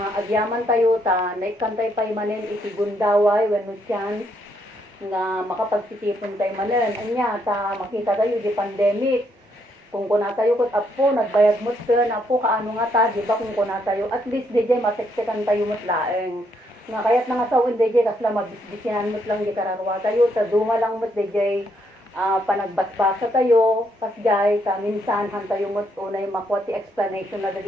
agyaman tayo, ta naikantay pa manin, iti gundaway, when no chance, nga makapagsitipon tayo manin. Anya, ta makita tayo, di pandemic, kung kuna tayo kot apo, nagbayad mo na po, kaano nga ta, di ba kung kuna tayo, at least DJ, maseksikan tayo mo't laeng. Nga kaya't nangasawin DJ, kasla magbisbisinan mo't lang di kararwa tayo, sa duma lang mo't DJ, panagbasbasa tayo, kasjay, sa minsan, han tayo mo't unay makwati explanation na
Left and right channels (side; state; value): both; normal; correlation 0.74